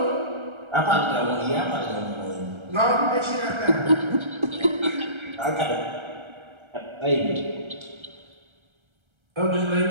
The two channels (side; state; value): left; late; 1.3 ms